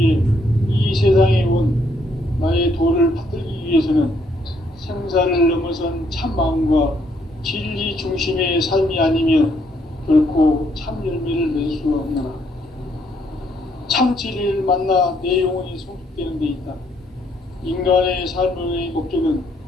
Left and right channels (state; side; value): normal; both; correlation 0.70